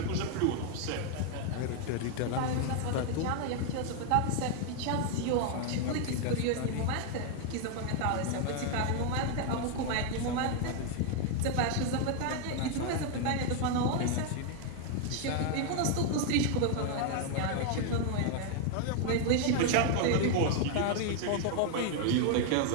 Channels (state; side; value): different; both; correlation 0.01